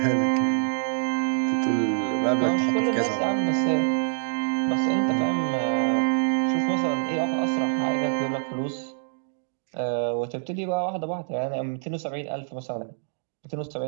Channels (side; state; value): left; silent; digital silence